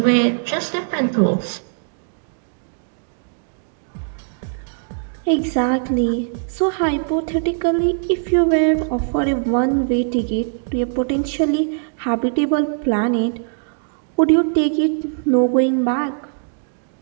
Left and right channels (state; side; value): silent; left; digital silence